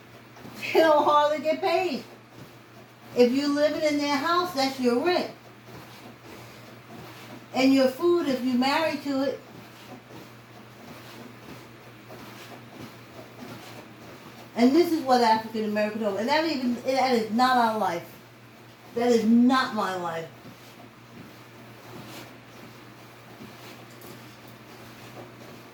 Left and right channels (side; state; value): both; identical; correlation 1.00